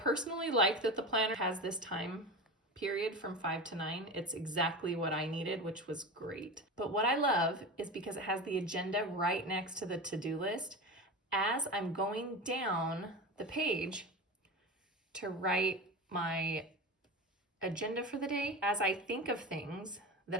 like that the planner has this time period from 5 to 9. It's exactly what I needed, which was great. But what I love is because it has the agenda right next to the to-do list. As I'm going down the page to write my agenda for the day, as I think of things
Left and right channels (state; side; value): normal; both; correlation 0.27